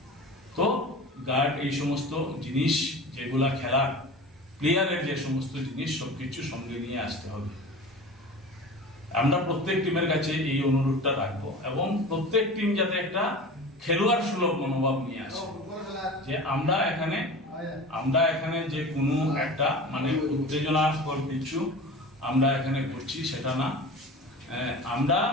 তো গার্ড, এই সমস্ত জিনিস যেগুলা খেলার প্লেয়ারের যে সমস্ত জিনিস সবকিছু সঙ্গে নিয়ে আসতে হবে। আমরা প্রত্যেক টিমের কাছে এই অনুরোধটা রাখবো এবং প্রত্যেক টিম যাতে একটা খেলোয়াড় সুলভ মনোভাব নিয়ে আসে, যে আমরা এখানে যে কোনো একটা মানে উত্তেজনাকর কিছু আমরা এখানে করছি সেটা না।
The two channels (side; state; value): both; normal; correlation 0.35